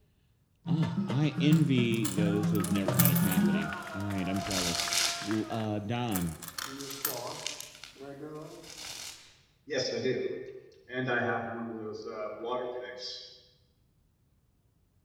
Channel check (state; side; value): identical; both; correlation 1.00